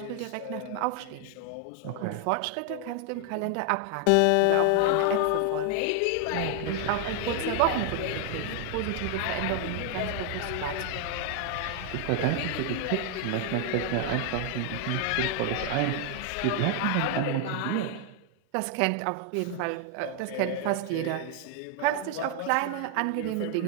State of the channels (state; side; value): different; both; correlation 0.00